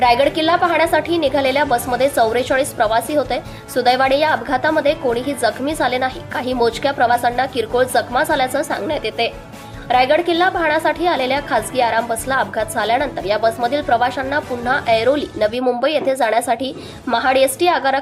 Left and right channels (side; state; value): both; identical; correlation 1.00